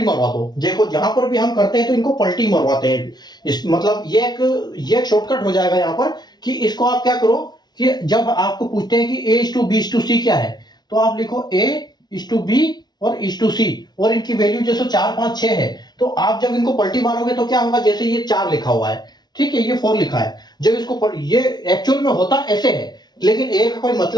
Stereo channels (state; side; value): late; right; 0.20 ms